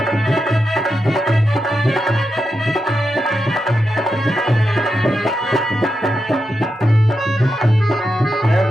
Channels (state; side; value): normal; both; correlation 0.87